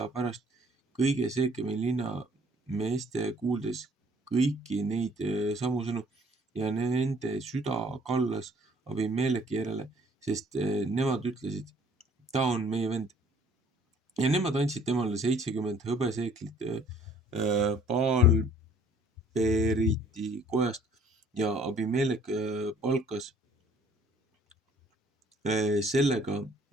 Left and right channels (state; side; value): normal; both; correlation 0.58